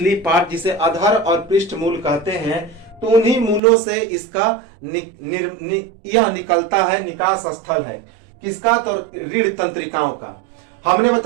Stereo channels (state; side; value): drops out; left; at 3.6 s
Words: पार्ट जिसे अधर और पृष्ठ मूल कहते हैं, तो उन्हीं मूलों से इसका यह निकलता है, निकास स्थल है। किसका? तो रीढ़ तंत्रिकाओं का। हमने